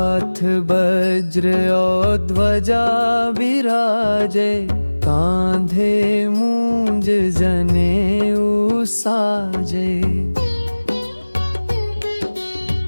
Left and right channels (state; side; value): inverted; both; correlation -1.00